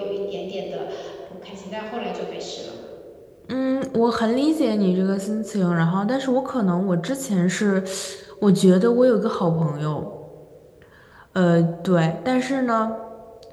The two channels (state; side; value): identical; both; correlation 1.00